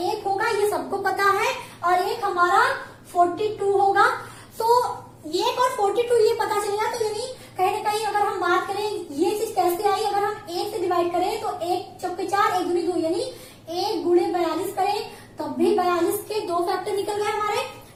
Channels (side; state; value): both; identical; correlation 1.00